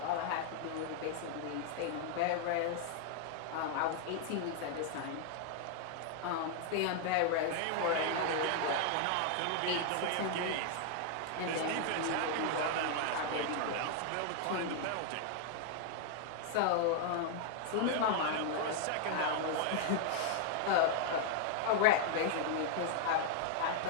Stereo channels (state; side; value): different; both; correlation 0.00